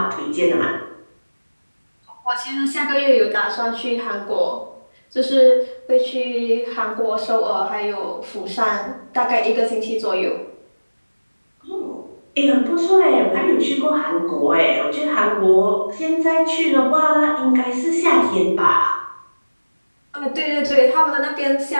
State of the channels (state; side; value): inverted; both; correlation -1.00